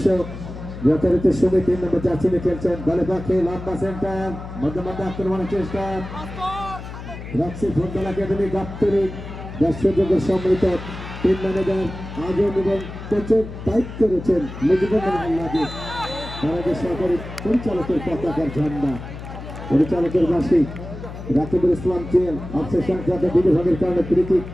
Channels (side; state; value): left; noise; hum, 11 dB below the sound